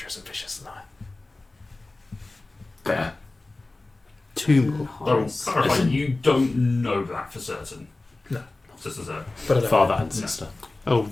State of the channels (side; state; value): right; quieter; 3.1 dB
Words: and vicious than I. Fair. Two more. I will clarify, you don't know that for certain. No. Sister Zoe. But I don't Father and sister. Oh,